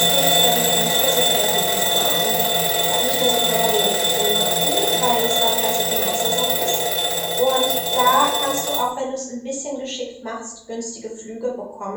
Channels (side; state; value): both; identical; correlation 1.00